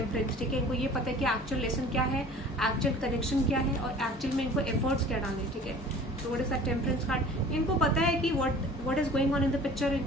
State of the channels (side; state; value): both; normal; correlation 0.45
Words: ठीक है, इनको ये पता है कि एक्चुअल लेसन क्या है, एक्चुअल कनेक्शन क्या है और एक्चुअल में इनको एफर्ट्स क्या डालने, ठीक है। So what is that temperance card, इनको पता है कि what is going on in the picture,